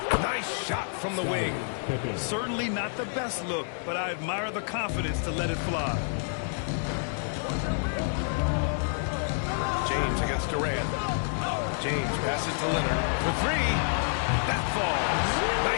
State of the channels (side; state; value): right; silent; 59 dB below the other